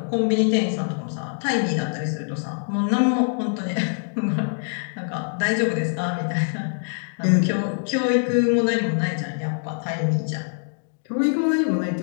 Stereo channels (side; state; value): right; silent; digital silence